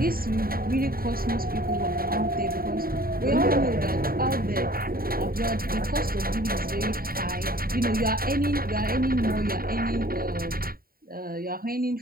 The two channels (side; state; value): left; late; 0.43 ms